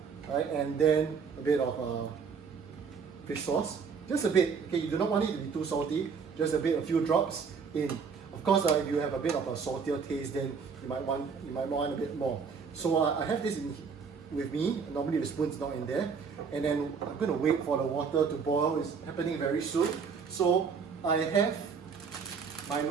right? And then a bit of fish sauce, just a bit. Okay, you do not want it to be too salty, just a bit, a few drops in. Of course, if you have a bit of a saltier taste, then you might want a bit more. So I have this with me. Normally the spoon's not in there, and then I'm going to wait for the water to boil. It's happening very soon. So I have my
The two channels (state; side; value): quieter; left; 5.8 dB